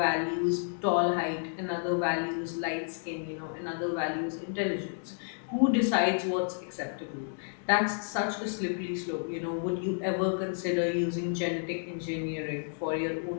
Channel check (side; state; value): right; silent; digital silence